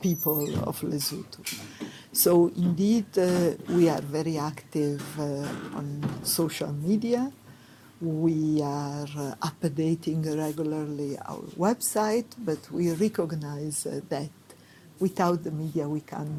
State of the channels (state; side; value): identical; both; correlation 1.00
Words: of Lesotho. So indeed, we are very active on social media. We are updating regularly our website, but we recognize that without the media we